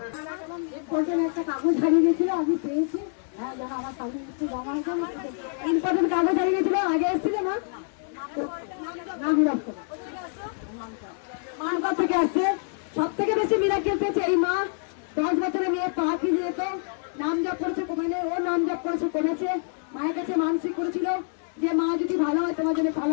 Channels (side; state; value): right; silent; 61 dB below the other